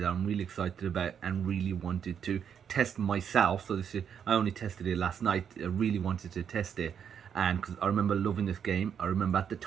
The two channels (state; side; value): quieter; left; 7.9 dB